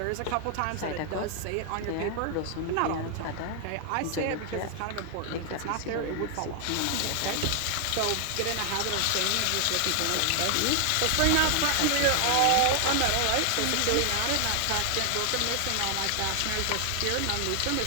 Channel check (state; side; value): different; both; correlation 0.00